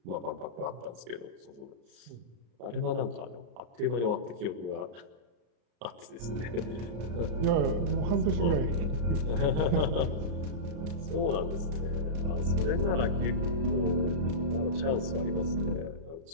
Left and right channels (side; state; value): left; late; 34 ms